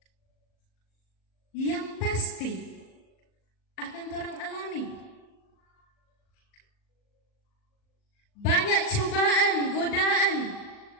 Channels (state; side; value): late; right; 39 ms